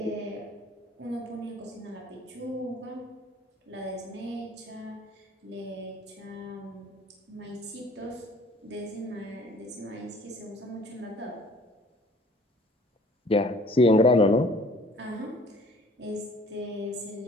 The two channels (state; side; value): normal; both; correlation 0.53